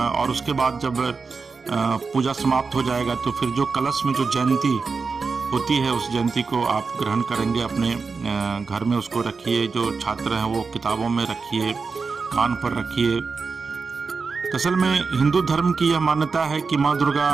उसके बाद जब पूजा समाप्त हो जाएगा तो फिर जो कलश में जो जयंती होती है उस जयंती को आप ग्रहण करेंगे, अपने घर में उसको रखिए। जो छात्र हैं वो किताबों में रखिए, कान पर रखिए। असल में हिंदू धर्म की यह मान्यता है कि माँ दुर्गा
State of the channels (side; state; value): left; quieter; 4.7 dB